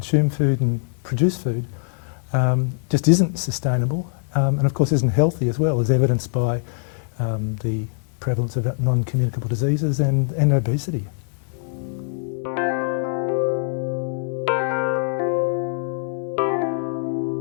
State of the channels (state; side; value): silent; right; 64 dB below the other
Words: food and produce food just isn't sustainable and of course isn't healthy as well, as evidenced by the prevalence of non-communicable diseases and obesity.